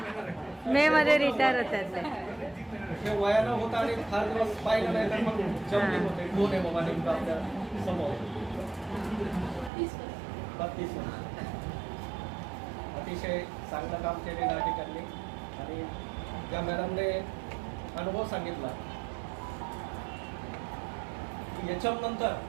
मे मध्ये रिटायर होतात ते. हे वयानं होतं आणि फार दिवस पाहिलं नाही तर मग जमले होते. कोण आहे बाबा नेमकं आपल्या समोर? 32 वर्ष. अतिशय चांगलं काम केलेलं आहे त्यांनी, आणि त्या मॅडमने अनुभव सांगितला की याच्यानंतर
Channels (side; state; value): left; drops out; at 9.7 s